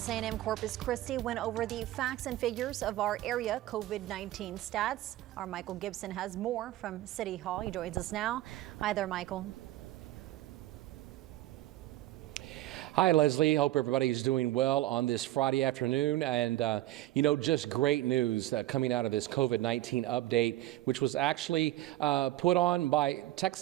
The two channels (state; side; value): quieter; left; 15.5 dB